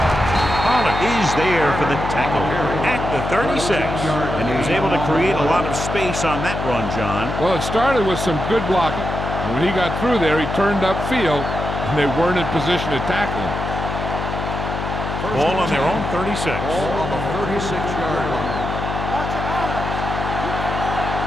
Pollard is there for the tackle at the 36. And he was able to create a lot of space on that run, John. Well, it started with some good blocking. And when he got through there, he turned upfield, and they weren't in position to tackle him. Ball on their own 36. Ball on the 36-yard line.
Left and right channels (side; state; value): left; noise; hum, 4 dB below the sound